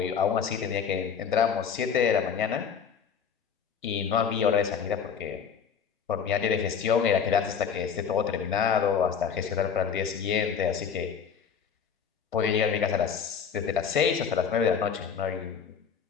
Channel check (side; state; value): right; quieter; 7.0 dB